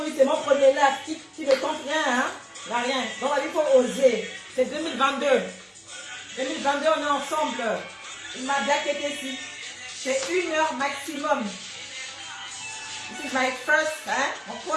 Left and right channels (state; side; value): identical; both; correlation 1.00